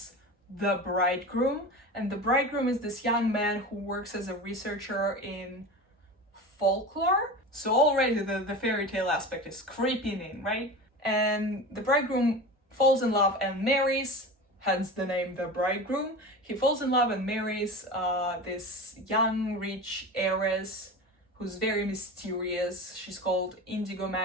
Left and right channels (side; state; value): both; normal; correlation 0.30